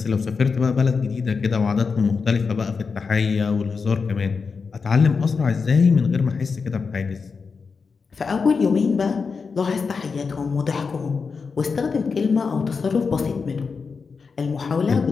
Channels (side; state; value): right; quieter; 5.1 dB